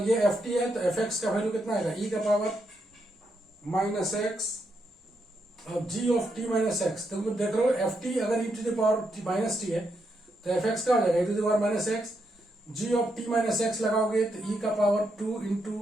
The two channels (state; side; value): normal; both; correlation 0.81